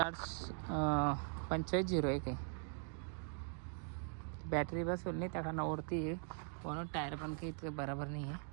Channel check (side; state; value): left; silent; 50 dB below the other